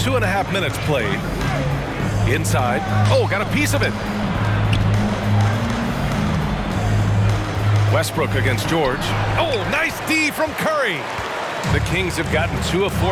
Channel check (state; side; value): identical; both; correlation 1.00